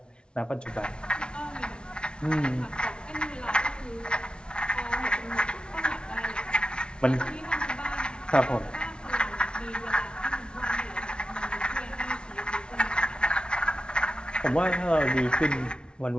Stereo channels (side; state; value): right; late; 0.056 ms